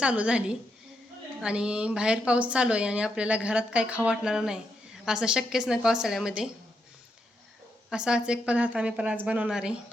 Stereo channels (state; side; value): normal; both; correlation 0.81